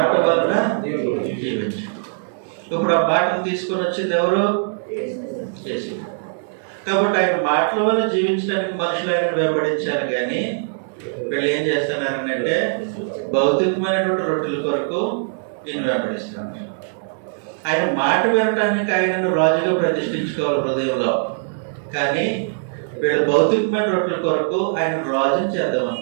వలన జీవించు. ఇప్పుడు ఆ మాటను తీసుకొని వచ్చింది ఎవరు? యేసు. కాబట్టి ఆయన మాటల వల్ల జీవించడానికి మనుషులు ఆయన వెంబడించారు. కానీ వీళ్ళు ఏం చేస్తున్నారంటే భౌతికమైనటువంటి రొట్టెల కొరకు ఈయన వెంబడిస్తున్నారు. ఆయన మాట వినటానికి ఆయనను రాజుగా ప్రతిష్ఠించుకోవాలి హృదయంలో. కానీ వీళ్ళు భౌతికమైన రొట్టెల కొరకు ఆయన రాజుని చేద్దాం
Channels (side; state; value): left; silent; digital silence